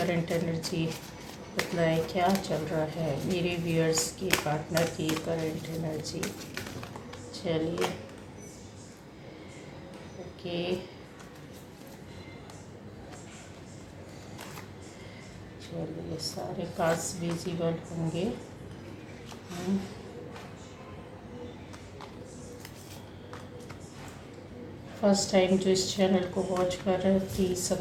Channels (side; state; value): both; identical; correlation 1.00